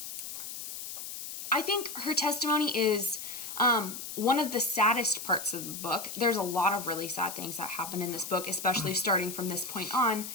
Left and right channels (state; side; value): noise; left; hiss, 8 dB below the sound